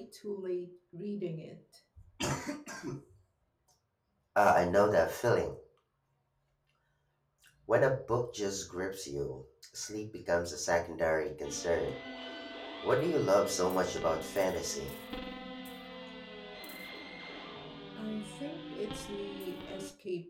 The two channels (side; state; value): both; identical; correlation 1.00